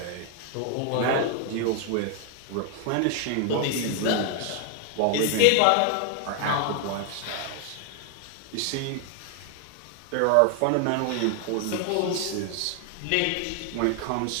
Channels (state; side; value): different; both; correlation 0.00